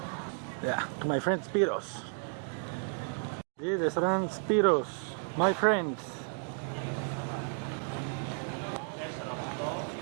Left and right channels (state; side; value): silent; left; 56 dB below the other